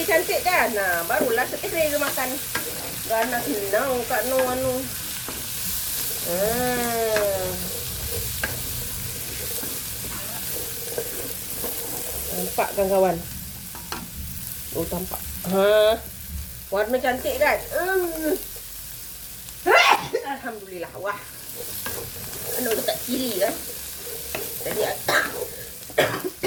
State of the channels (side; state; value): both; identical; correlation 1.00